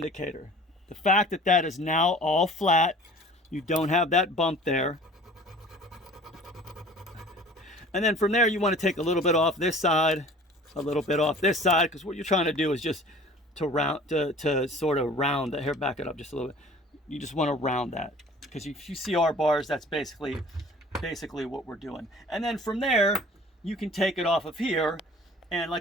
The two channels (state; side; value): normal; both; correlation 0.47